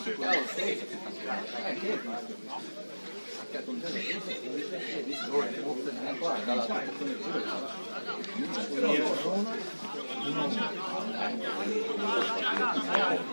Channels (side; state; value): both; inverted; correlation -1.00